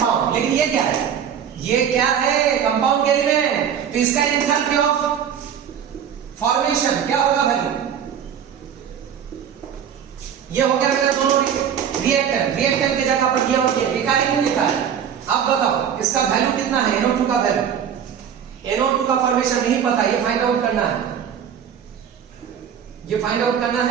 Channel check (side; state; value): left; quieter; 8.5 dB